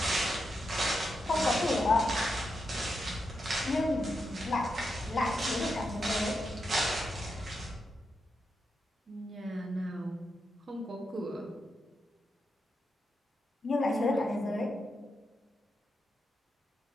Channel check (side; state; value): both; normal; correlation 0.85